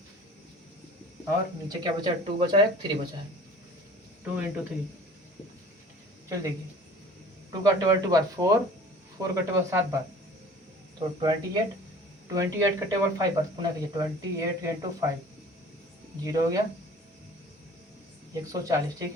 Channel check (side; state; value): both; normal; correlation 0.46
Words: और नीचे क्या बचा है, 2 बचा है, 3 बचा है, 2 × 3। चलिए देखिए 2 का टेबल 2 बार 4, 4 का टेबल 7 बार, तो 28, 28 का टेबल 5 बार, पुनः कहिए 28 × 5, 0 हो गया 140।